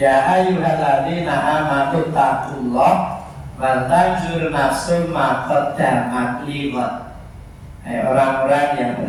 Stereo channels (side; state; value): both; identical; correlation 1.00